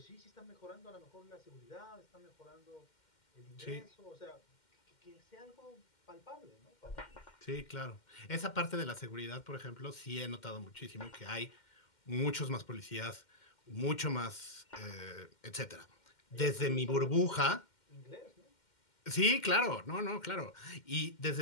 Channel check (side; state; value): right; late; 2.1 ms